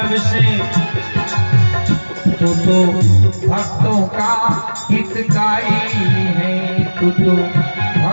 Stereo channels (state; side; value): inverted; both; correlation -1.00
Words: तू तो भक्तों का हितकारी है, तू तो